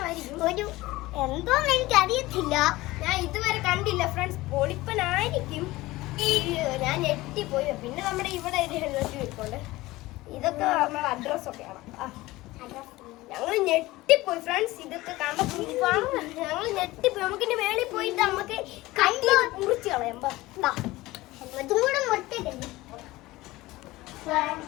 ഒരു എന്തോന്ന് എനിക്ക് അറിയത്തില്ല, ഞാൻ ഇതുവരെ കണ്ടില്ല ഫ്രണ്ട്സ്. പൊളിപ്പനായിരിക്കും. ഞാൻ ഞെട്ടിപ്പോയി. പിന്നെ നമ്മുടെ ഇവിടെ ഒരു ഹെൽമെറ്റ് വെക്കുന്നുണ്ട്. ഇതൊക്കെ നമ്മുടെ അഡ്രസ്സൊക്കെയാണ്. ഞങ്ങൾ ഞെട്ടിപ്പോയി ഫ്രണ്ട്സ്. ഇതൊക്കെ കണ്ടപ്പോൾ ഞങ്ങൾ ഞെട്ടിപ്പോയി. നമുക്കിന്റെ മേളിൽ പോയിട്ട് നമുക്ക് കട്ടി മുറിച്ച് കളയാം. ഹെൽമെറ്റും കൂടെ മുറിച്ചിട്ടുണ്ട്.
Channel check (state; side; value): quieter; right; 18.9 dB